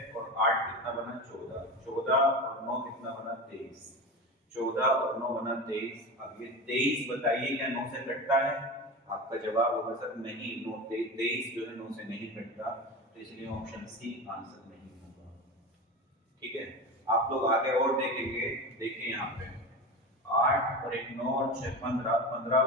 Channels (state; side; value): normal; both; correlation 0.26